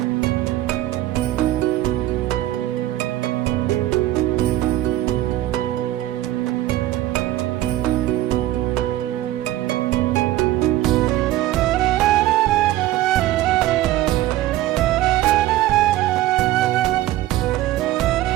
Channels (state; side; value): quieter; left; 15.0 dB